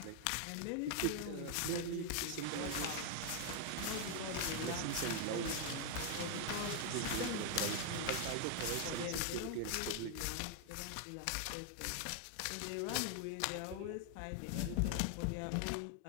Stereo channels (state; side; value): different; both; correlation 0.00